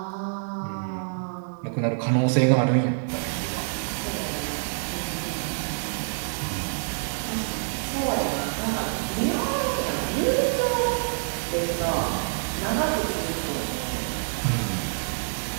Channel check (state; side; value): silent; left; 60 dB below the other